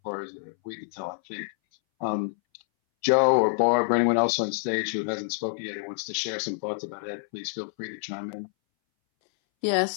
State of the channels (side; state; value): right; silent; 60 dB below the other